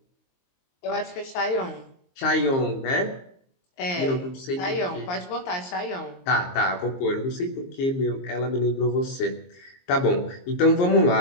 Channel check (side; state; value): right; late; 22 ms